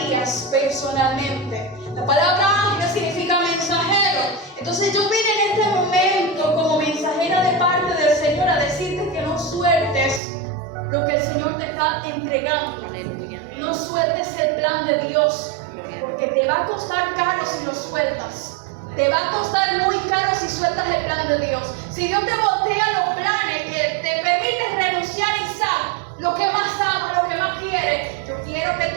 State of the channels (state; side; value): drops out; left; at 10.2 s